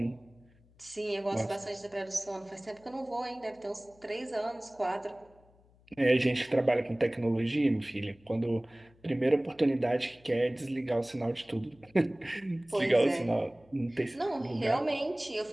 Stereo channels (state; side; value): noise; left; hum, 29 dB below the sound